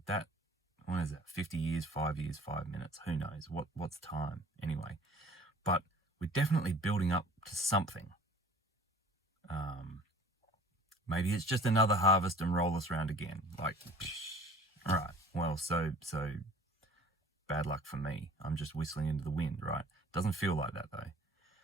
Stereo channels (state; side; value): normal; both; correlation 0.48